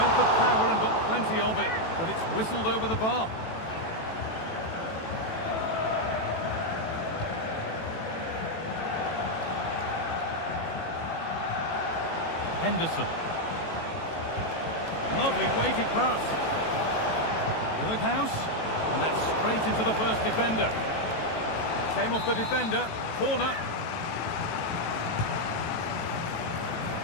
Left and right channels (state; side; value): late; right; 18 ms